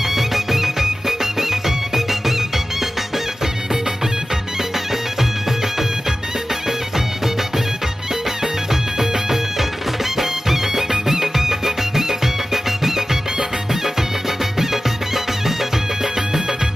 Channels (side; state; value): both; normal; correlation 0.95